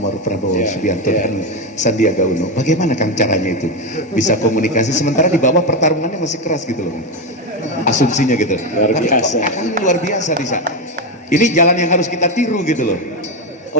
Prabowo Subianto dan Sandiaga Uno. Bagaimana Kang caranya itu bisa komunikasi sementara di bawah pertarungannya masih keras gitu loh, asumsinya gitu. Luar biasa. Luar biasa bisa. Ini jalan yang harus kita tiru gitu loh.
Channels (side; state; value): both; normal; correlation 0.11